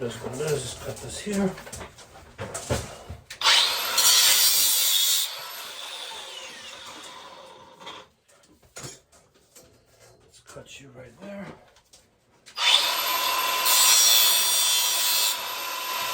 is what it is. Just cut this here. Let's cut you right there.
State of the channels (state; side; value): identical; both; correlation 1.00